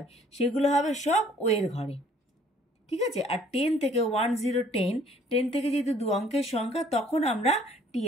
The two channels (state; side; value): normal; both; correlation 0.58